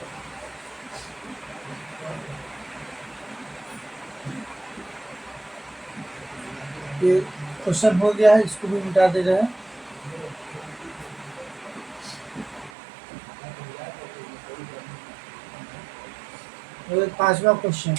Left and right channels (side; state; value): left; drops out; at 12.7 s